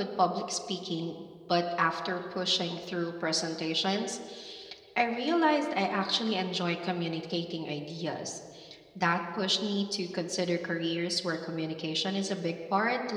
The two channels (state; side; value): identical; both; correlation 1.00